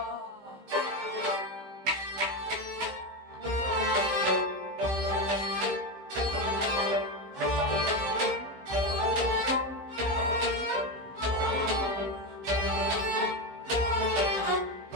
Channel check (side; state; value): left; late; 15 ms